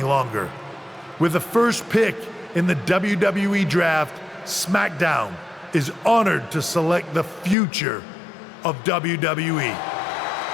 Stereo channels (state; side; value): drops out; right; at 7.6 s